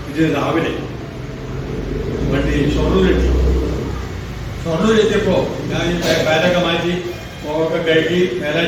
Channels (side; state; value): both; identical; correlation 1.00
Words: ഇത് രാവിലെ വണ്ടി ഷൊർണൂരെത്തിയപ്പോ ഞാൻ ബാഗൊക്കെ മാറ്റി മുഖമൊക്കെ കഴുകി